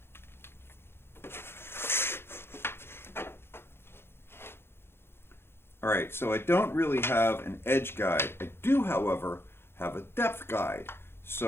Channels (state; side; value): late; right; 0.11 ms